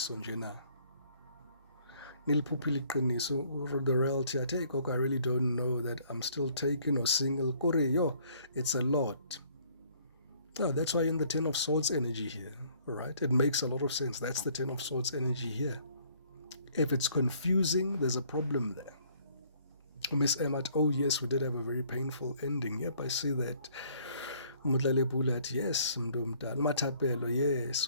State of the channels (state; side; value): inverted; both; correlation -0.61